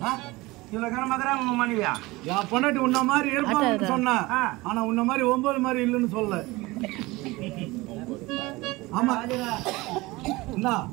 இவ்வளவு கனமாக்கறா உங்க மணியா? என் பொண்டாட்டி உன்ன மாதிரி இருப்பான்னு சொன்னேன். ஆனா உன்ன மாதிரி 9 மாதிரி இல்லைன்னு சொல்லல. ஆமா என்ன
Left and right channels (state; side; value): quieter; left; 21.4 dB